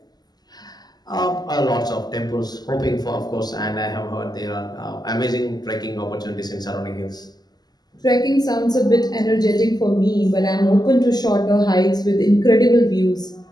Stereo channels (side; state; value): right; late; 0.20 ms